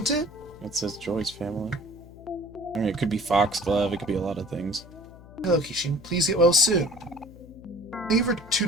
it? It says Joy's family. I mean, it could be Foxglove, it could be a lot of things. Hello, Kishin. Please get well soon. Thank you for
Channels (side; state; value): left; noise; hum, 19 dB below the sound